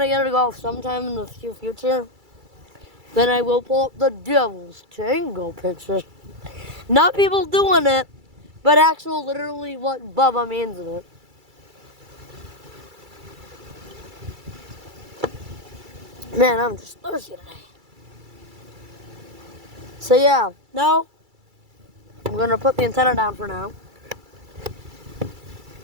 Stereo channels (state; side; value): late; left; 2.3 ms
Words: get it to go off sometime in the future. Then I will pull up the Devil's Tango picture. Not people doing it, but actual literally what Bubba means in it. Man, I'm just thirsty today. So yeah, now I'm going to put the antenna down for now.